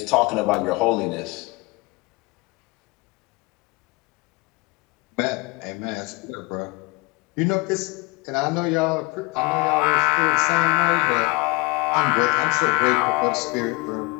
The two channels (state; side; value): quieter; right; 25.5 dB